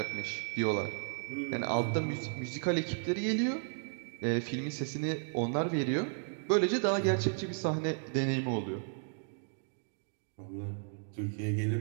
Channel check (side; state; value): left; silent; digital silence